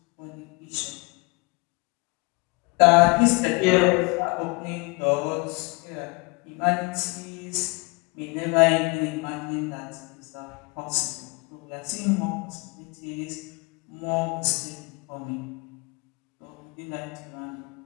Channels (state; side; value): quieter; right; 28.1 dB